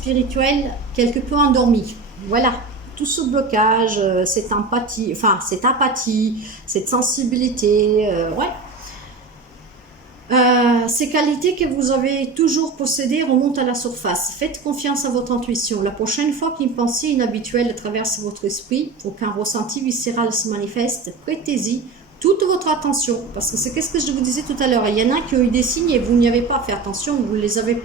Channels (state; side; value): quieter; left; 4.2 dB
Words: quelque peu endormies. Voilà, tout ce blocage, cette empathie, cette sensibilité, ouais. Ces qualités que vous avez toujours possédées remontent à la surface. Faites confiance à votre intuition. La prochaine fois qu'une pensée inhabituelle traverse votre esprit ou qu'un ressenti viscéral se manifeste, prêtez-y toute votre attention. Parce que c'est ce que je vous disais tout à l'heure. Il y en a qui ont eu des signes et vous n'y avez pas fait attention, vous ne les avez